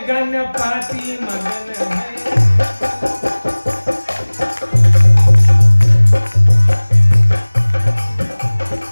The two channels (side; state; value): both; inverted; correlation -1.00